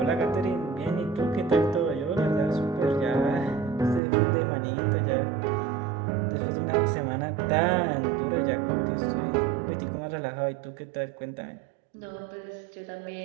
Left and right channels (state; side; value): drops out; left; at 4.0 s